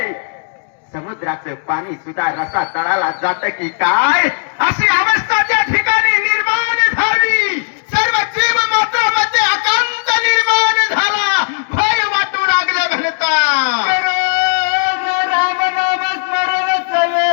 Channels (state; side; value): silent; right; digital silence